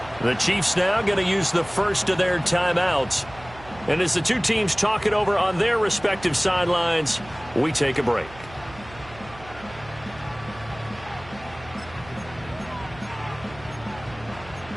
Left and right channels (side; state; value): right; noise; hum, 19 dB below the sound